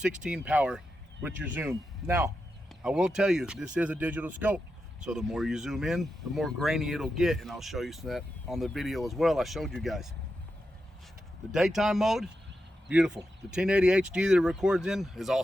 power with your zoom. Now, I will tell you, this is a digital scope. So the more you zoom in, the more grainy it'll get, and I'll show you that on the video as well I showed you guys. The daytime mode, beautiful. The 1080 HD that it records in is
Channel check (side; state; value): both; normal; correlation 0.88